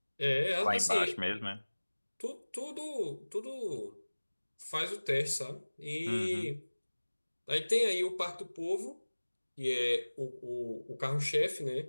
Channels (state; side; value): inverted; both; correlation -1.00